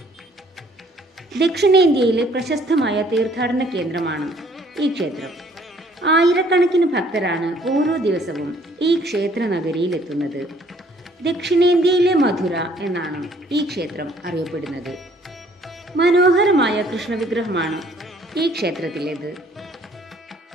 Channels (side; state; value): both; normal; correlation 0.60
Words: ദക്ഷിണേന്ത്യയിലെ പ്രശസ്തമായ തീർത്ഥാടന കേന്ദ്രമാണ് ഈ ക്ഷേത്രം. ആയിരക്കണക്കിന് ഭക്തരാണ് ഓരോ ദിവസവും ഈ ക്ഷേത്ര നഗരിയിൽ എത്തുന്നത്. ദക്ഷിണേന്ത്യയിലെ മധുര എന്നാണ് ഈ ക്ഷേത്രം അറിയപ്പെടുന്നത്. മനോഹരമായ കൃഷ്ണവിഗ്രഹമാണ് ഈ ക്ഷേത്രത്തിലേത്.